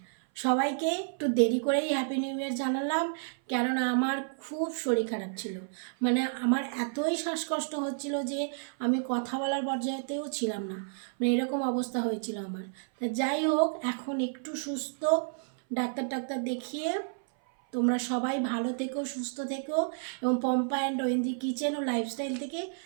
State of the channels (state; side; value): silent; left; 57 dB below the other